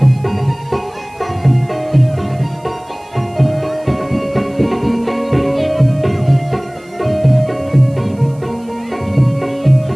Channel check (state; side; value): noise; right; hiss, 29 dB below the sound